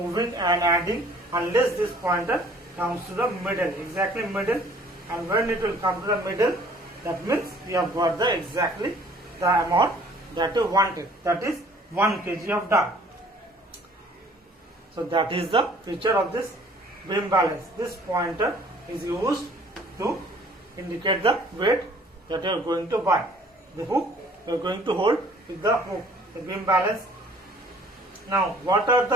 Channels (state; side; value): normal; both; correlation 0.55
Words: and adding unless this pointer comes to the middle, exactly middle. And when it will come to the middle, that means we have got the exactly the amount that you wanted. That is 1 kg of dal. So that is the feature of this beam balance. This pointer is used to indicate the weight that you are going to buy. The hook you are going to hold with the hook, the beam balance. Now, what are